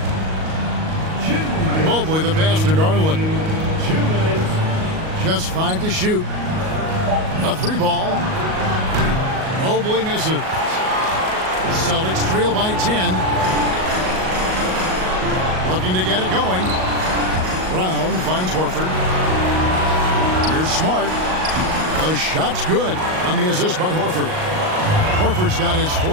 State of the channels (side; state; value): left; late; 38 ms